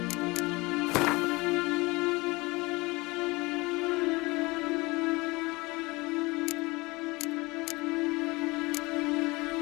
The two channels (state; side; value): quieter; right; 23.7 dB